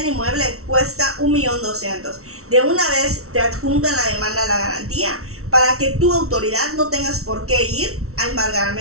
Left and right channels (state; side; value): late; left; 0.63 ms